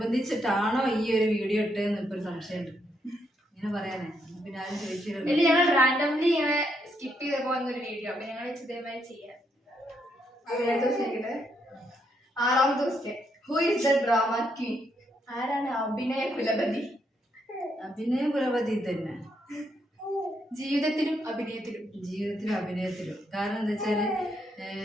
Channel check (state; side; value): normal; both; correlation 0.77